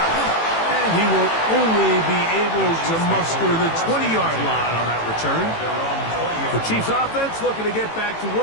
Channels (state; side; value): late; right; 18 ms